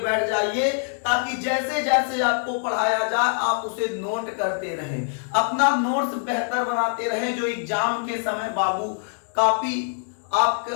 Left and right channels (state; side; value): silent; right; digital silence